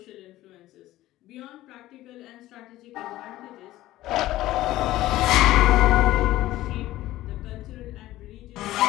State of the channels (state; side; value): quieter; right; 15.8 dB